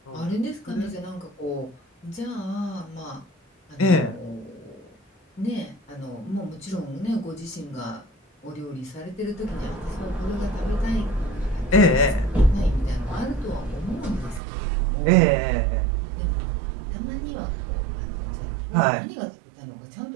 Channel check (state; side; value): drops out; left; at 14.4 s